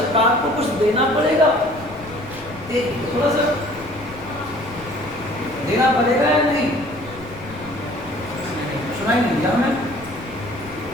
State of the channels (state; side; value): noise; left; rumble, 17 dB below the sound